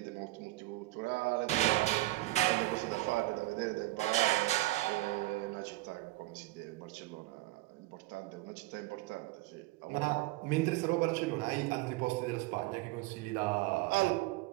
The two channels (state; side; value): quieter; left; 19.3 dB